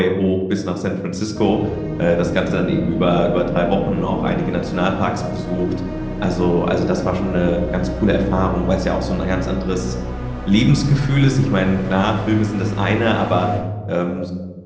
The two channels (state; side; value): identical; both; correlation 1.00